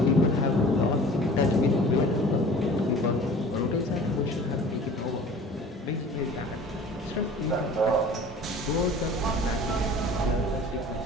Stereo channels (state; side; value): normal; both; correlation 0.45